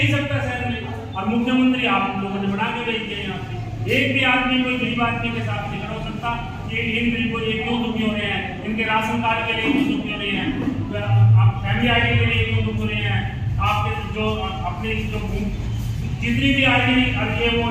सकता शहर में। और मुख्यमंत्री आप लोगों ने बना के भेज दिया यहाँ पे, एक भी आदमी कोई गरीब आदमी के साथ नहीं खड़ा हो सकता कि इन गरीबों ये क्यों दुखी हो रहे हैं, इनके राशन कार्ड के लिए क्यों दुखी हो रहे हैं, आप फैमिली आईडी के लिए क्यों दुख हो रहे हैं, आपके जो अपने जो जितनी भी आईडी ये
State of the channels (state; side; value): identical; both; correlation 1.00